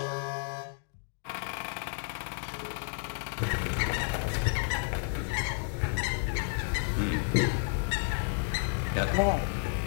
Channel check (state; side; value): silent; right; 57 dB below the other